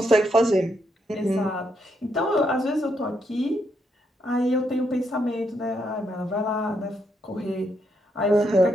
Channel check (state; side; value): normal; both; correlation 0.78